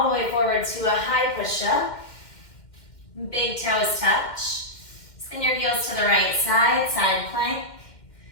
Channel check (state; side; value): late; right; 2.1 ms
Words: the way forward to a high push-up. Big toes touch. Spin your heels to the right side, side plank.